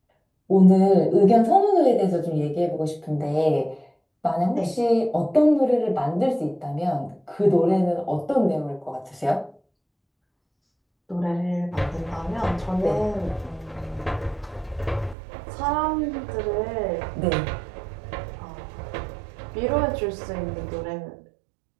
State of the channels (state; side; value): drops out; left; at 15.2 s